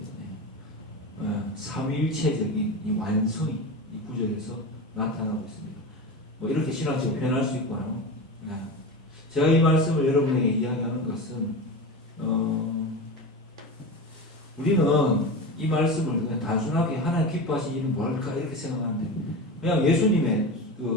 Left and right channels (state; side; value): normal; both; correlation 0.25